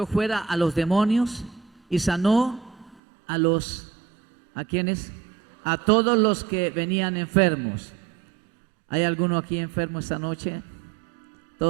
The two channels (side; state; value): left; drops out; at 3.0 s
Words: a los demonios y sanó ¿a quiénes? A todos los que venían enfermos. ¿Hay alguno aquí enfermo esta noche?